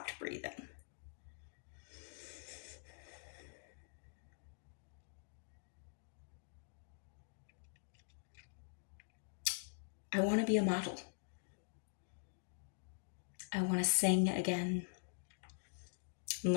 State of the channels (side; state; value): right; silent; digital silence